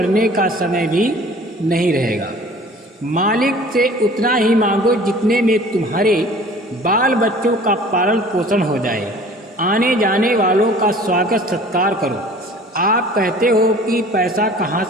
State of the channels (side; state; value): both; normal; correlation 0.47